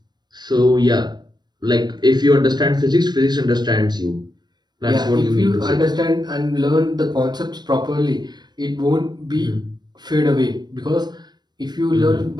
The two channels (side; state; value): left; late; 0.21 ms